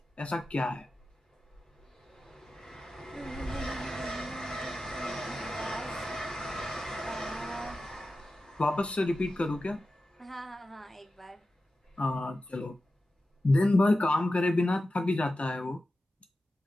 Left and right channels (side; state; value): both; normal; correlation 0.93